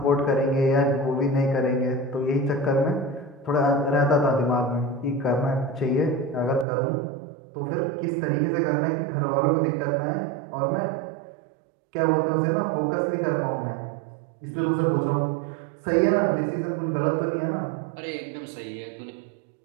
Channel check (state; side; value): drops out; left; at 6.7 s